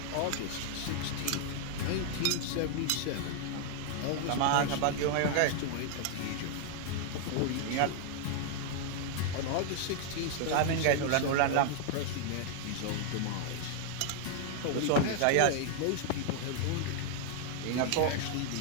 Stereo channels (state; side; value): different; both; correlation 0.00